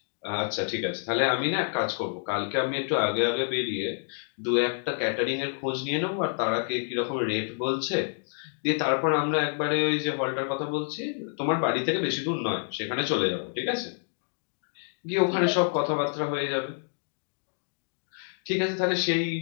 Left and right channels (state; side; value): silent; right; digital silence